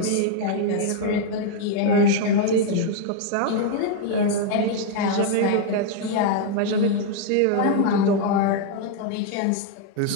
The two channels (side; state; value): both; different; correlation 0.00